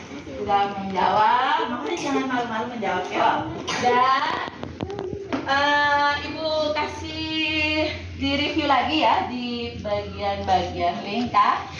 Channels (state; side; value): identical; both; correlation 1.00